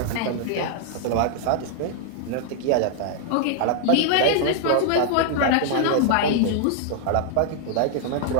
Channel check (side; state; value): both; different; correlation 0.00